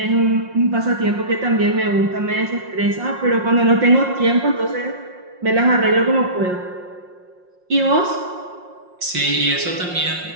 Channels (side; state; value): left; late; 5.6 ms